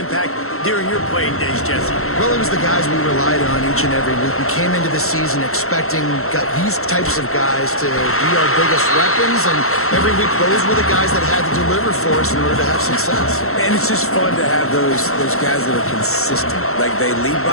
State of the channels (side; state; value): right; late; 0.63 ms